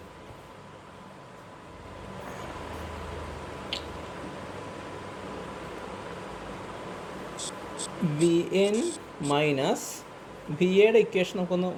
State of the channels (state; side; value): identical; both; correlation 1.00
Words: Vn മൈനസ് VAയുടെ ഇക്വേഷൻ നമുക്കൊന്ന്